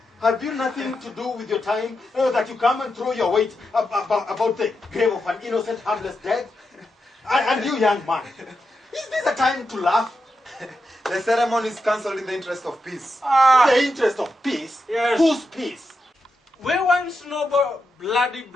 have you nothing to do with your time that you come and throw your weight about the grave of an innocent, harmless dead? And you, young man, is this a time to laugh? The ceremony is cancelled in the interest of peace. The interest of peace? Yes. Whose peace? We want no bloody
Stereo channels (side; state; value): both; normal; correlation 0.87